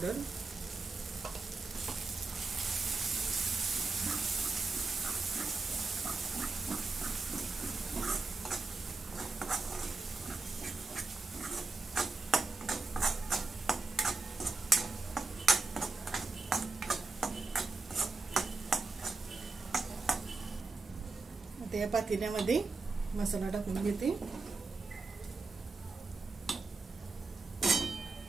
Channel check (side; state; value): left; quieter; 3.9 dB